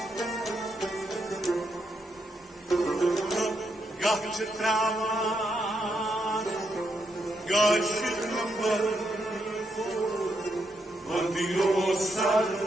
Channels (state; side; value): normal; both; correlation 0.80